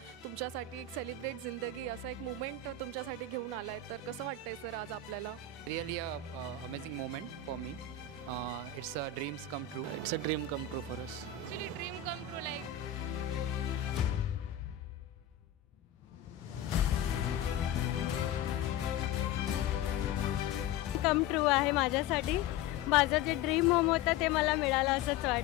तुमच्यासाठी एक सेलिब्रेट जिंदगी असा एक मुमेंट तुमच्यासाठी घेऊन आलाय, तर कसं वाटतंय सर आज आपल्याला? Really a amazing moment for me. It's a dreams come true. It's a dream come true for us. Actually dream come true, like come true आहे माझ्यासाठी. माझं जे ड्रीम होम होतं ते मला मिळालं असंच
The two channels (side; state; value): right; quieter; 6.9 dB